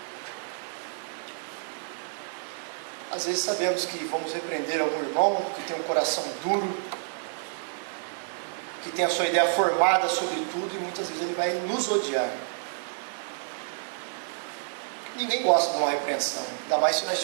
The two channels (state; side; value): silent; left; digital silence